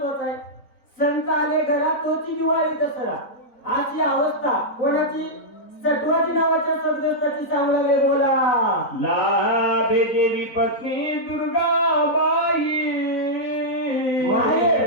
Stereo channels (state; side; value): late; right; 4.0 ms